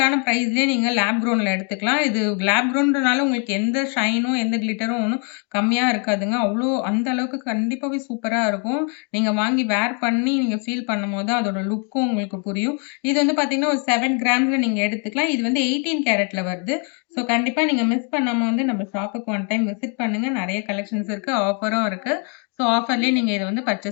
பிரைஸ்லயே நீங்க லேப் க்ரௌன்ல எடுத்துக்கலாம். இது லேப் க்ரௌன்றனால உங்களுக்கு எந்த ஷைனும், எந்த கிளிட்டரும் ஒண்ணும் கம்மியா இருக்காதுங்க. அந்த அளவுக்கு கண்டிப்பாவே சூப்பரா இருக்கும். நீங்க வாங்கி வேர் பண்ணி நீங்க ஃபீல் பண்ணும்போது அதோட லுக்கும் உங்களுக்கு புரியும். இது வந்து பார்த்தீங்கன்னா, ஒரு 7 கிராம்ஸ்ல நீங்க எடுத்துக்கலாம். இது வந்து 18 கேரட்ல வருது. ஸோ கண்டிப்பா நீங்க மிஸ் பண்ணாம வந்து நம்ம ஷாப்புக்கு ஒன் டைம் விசிட் பண்ணுங்க. நெறைய கலெக்ஷன்ஸ் இருக்கு. ஆஃபரும் இருக்கு. ஸோ ஆஃபர்லயே நீங்க இத வந்து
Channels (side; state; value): right; quieter; 38.5 dB